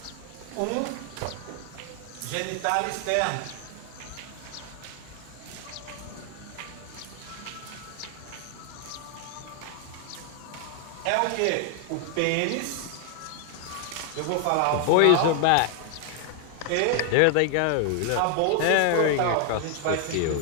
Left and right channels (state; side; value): different; both; correlation 0.00